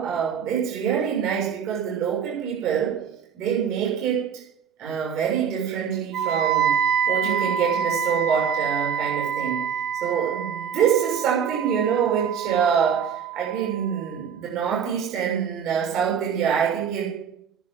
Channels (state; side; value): quieter; left; 7.6 dB